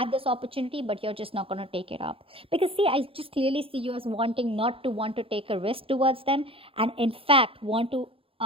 this opportunity but you're just not going to take it up. Because see, I just clearly see you as wanting not to want to take a risk towards them, and in fact want to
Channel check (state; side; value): late; left; 0.27 ms